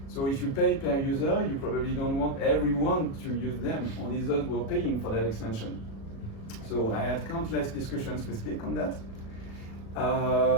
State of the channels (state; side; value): late; right; 36 ms